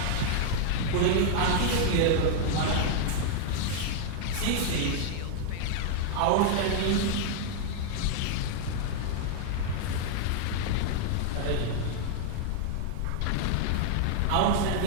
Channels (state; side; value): different; both; correlation -0.01